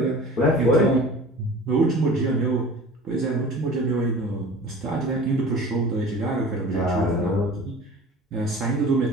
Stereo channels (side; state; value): both; normal; correlation 0.41